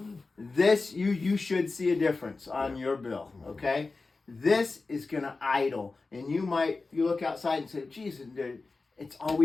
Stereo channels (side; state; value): right; quieter; 3.8 dB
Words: This you should see a difference on your bill. Okay. This is gonna idle, and you look outside and say, "Geez, it's